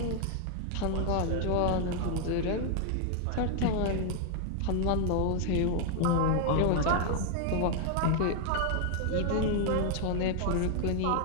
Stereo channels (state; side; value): different; both; correlation 0.00